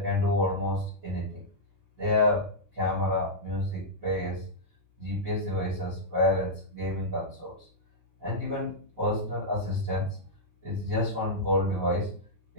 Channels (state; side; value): normal; both; correlation -0.09